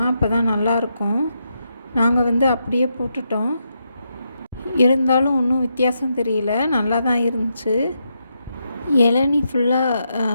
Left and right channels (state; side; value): inverted; both; correlation -0.82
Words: அப்போ தான் நல்லாயிருக்கும். நாங்கள் அப்படியே போட்டுட்டோம். இருந்தாலும் ஒன்றும் வித்தியாசம் தெரியல, நல்லா தான் இருந்துச்சு. இளநீ ஃபுல்லாக